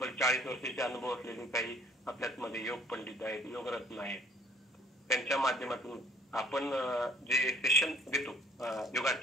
40 वर्षाचे अनुभव असलेले काही आपल्यामध्ये योग पंडित आहेत, योगरत्न आहेत. त्यांच्या माध्यमातून आपण जे सेशन देतो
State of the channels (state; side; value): normal; both; correlation 0.59